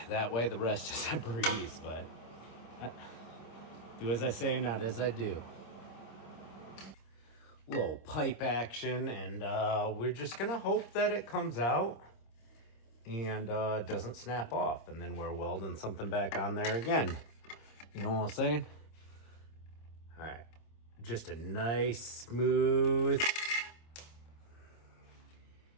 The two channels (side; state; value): right; late; 26 ms